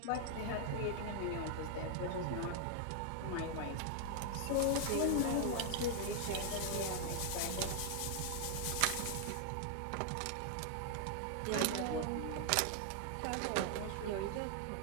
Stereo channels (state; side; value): different; both; correlation 0.00